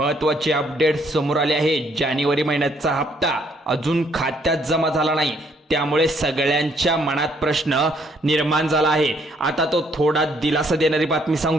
अपडेट समोर आली आहे। जानेवारी महिन्याचा हप्ता अजून खात्यात जमा झाला नाही, त्यामुळे सगळ्यांच्या मनात प्रश्न निर्माण झाला आहे। आता तो थोडा दिलासा देणारी बातमी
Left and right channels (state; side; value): normal; both; correlation 0.68